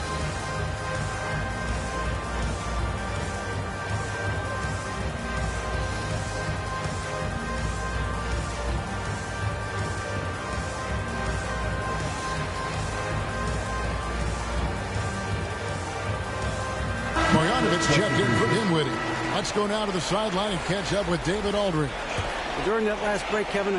Checked in for Dinwiddie. Let's go now to the sideline and catch up with David Aldridge. During that last break, Kevin,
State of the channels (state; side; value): identical; both; correlation 1.00